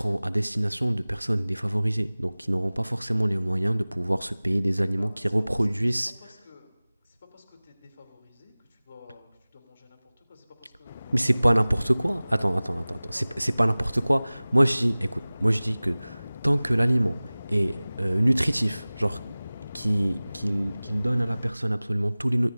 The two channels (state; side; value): inverted; both; correlation -0.99